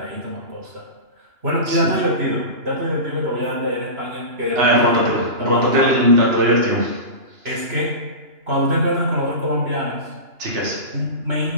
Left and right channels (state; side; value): late; left; 2.9 ms